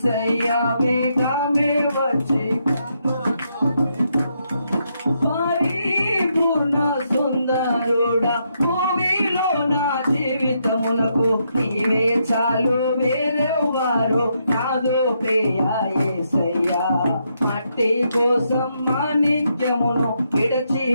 వేగమే వచ్చి. పరిపూర్ణ సుందరుడా భూమిలో నా జీవితమునకు నీవే చాలు, వేరెవ్వరు నాదు ప్రియా యేసయ్యా. మట్టి కోసం మాణిక్యమును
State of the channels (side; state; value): both; inverted; correlation -0.78